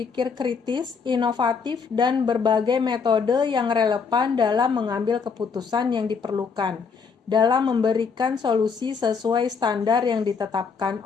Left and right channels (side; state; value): right; quieter; 5.6 dB